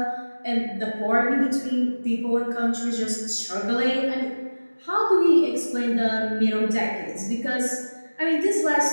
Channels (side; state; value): both; inverted; correlation -1.00